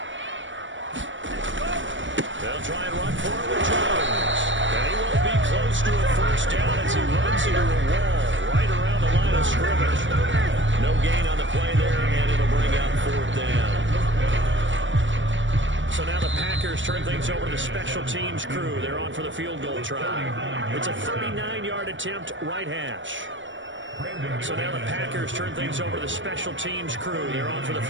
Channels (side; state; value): left; late; 0.55 ms